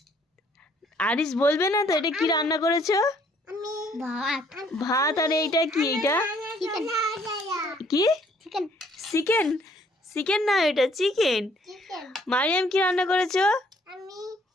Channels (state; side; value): normal; both; correlation 0.63